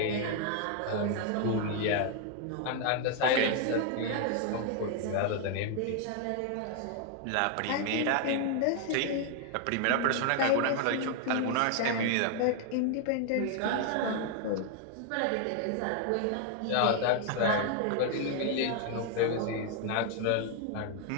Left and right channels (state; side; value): different; both; correlation 0.00